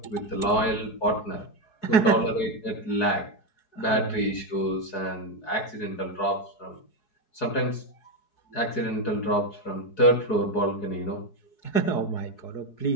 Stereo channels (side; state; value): right; late; 4.7 ms